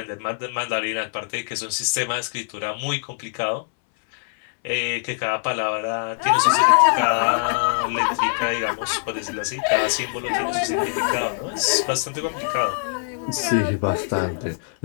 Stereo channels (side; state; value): right; silent; 63 dB below the other